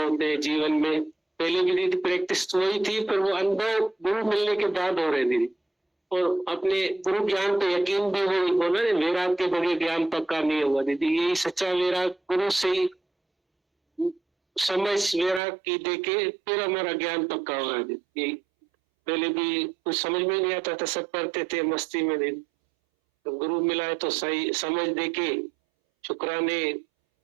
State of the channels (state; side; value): drops out; left; at 15.4 s